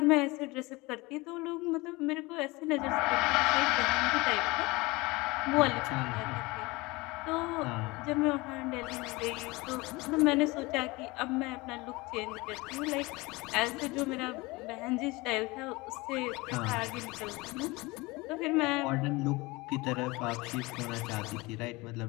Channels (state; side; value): quieter; right; 23.2 dB